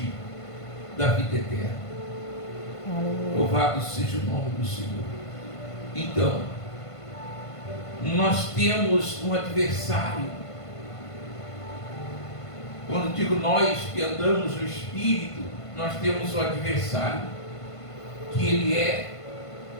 da vida eterna. Aleluia. Louvado seja o nome do Senhor. Então, nós temos um adversário. Quando digo nós que andamos no Espírito, nós temos um adversário, que ele é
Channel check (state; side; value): late; right; 1.5 ms